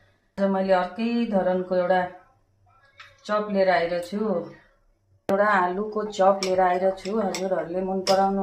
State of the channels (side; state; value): both; identical; correlation 1.00